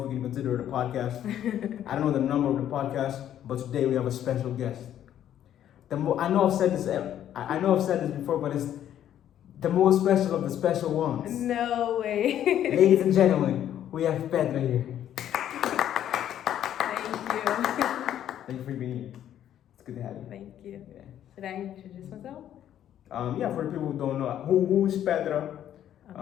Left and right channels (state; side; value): quieter; right; 10.9 dB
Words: we can consider it a podcast. I don't know the number of the podcast, but today we have a special guest. I know I've said this. I know I've said this before, but it's the most special of the special ones. No way. Ladies and gentlemen, we have Petra here. Thank you. Thank you for being here. It's good to have you. Thank you. Yeah. Should I introduce myself? Yeah, for the people who don't know, who is Petra?